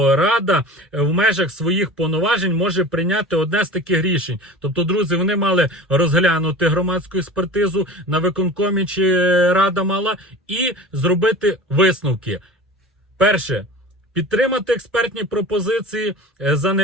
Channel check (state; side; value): normal; both; correlation 0.36